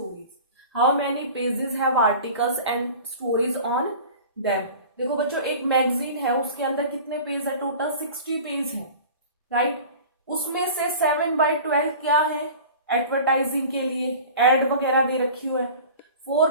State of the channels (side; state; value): both; inverted; correlation -0.40